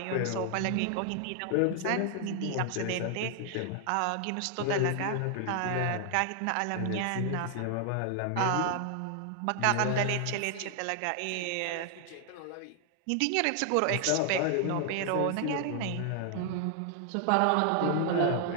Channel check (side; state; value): both; different; correlation 0.00